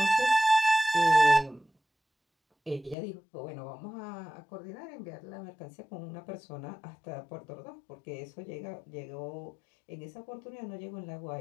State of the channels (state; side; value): drops out; right; at 3.0 s